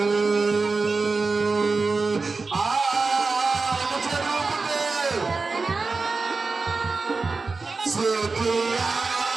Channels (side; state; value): left; quieter; 4.1 dB